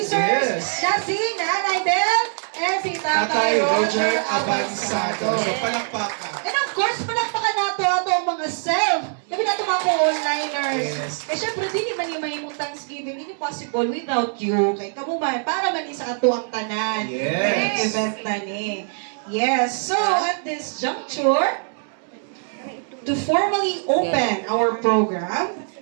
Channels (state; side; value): silent; left; 64 dB below the other